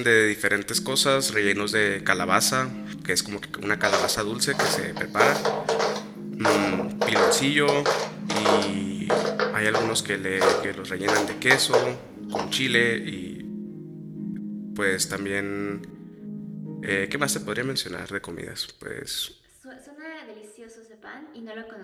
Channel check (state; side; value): identical; both; correlation 1.00